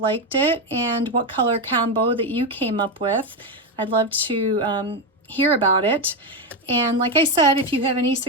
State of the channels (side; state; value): both; normal; correlation 0.10